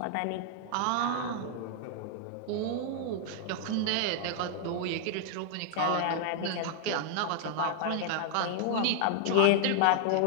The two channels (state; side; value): different; both; correlation 0.00